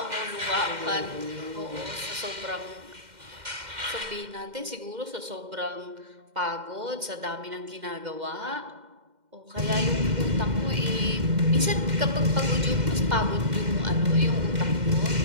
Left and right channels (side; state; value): left; late; 2.1 ms